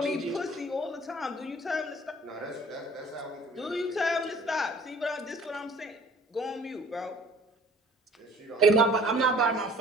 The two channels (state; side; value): normal; both; correlation 0.51